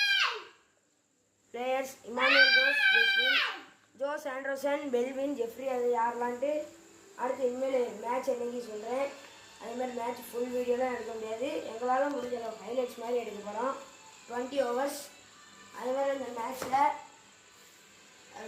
players Emmanuel Jose Anderson Belwin Jeffrey அது யாரெல்லாம்ட்டு அடுத்து இனிமேல் மேட்ச் என்னைக்கு சொல்கிறேன். அதேமாதிரி மேட்ச் ஃபுல் வீடியோலாம் எடுக்க முடியாது. எங்களால் முடிஞ்ச ஹைலைட்ஸ் மாதிரி எடுக்க போகிறோம். 20 overs. அதேமாதிரி இந்த மேட்ச்சில்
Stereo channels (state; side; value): identical; both; correlation 1.00